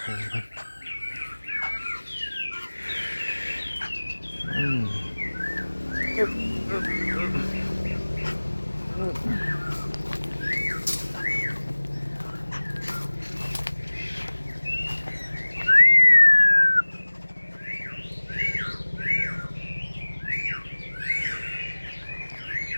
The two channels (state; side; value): inverted; both; correlation -1.00